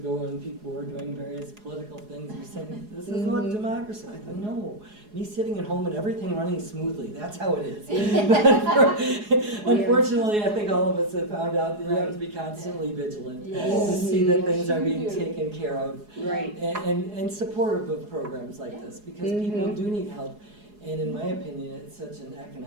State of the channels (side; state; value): left; late; 4.8 ms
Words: when people were doing various political things, we said, this is what democracy, I thought, no, me sitting at home and everything running smoothly, that's how it is. But unfortunately, I think all of us have found out that you have to be constantly vigilant to Yes. see that Yes, things are you being do. taken care of. Right. And supportive of programs like this, because people Mhm. do need help. And in my opinion, it's such an